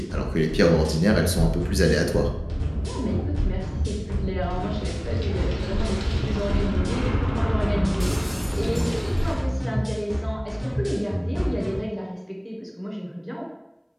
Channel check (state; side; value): identical; both; correlation 1.00